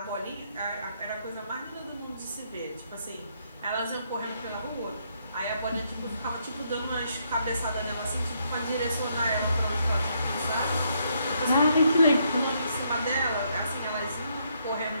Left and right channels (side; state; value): both; inverted; correlation -0.74